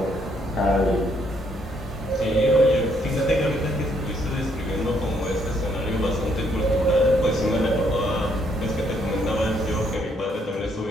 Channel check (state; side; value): normal; both; correlation 0.71